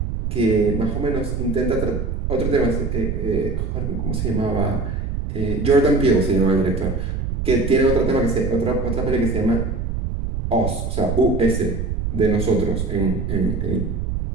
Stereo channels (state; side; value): noise; right; rumble, 3 dB below the sound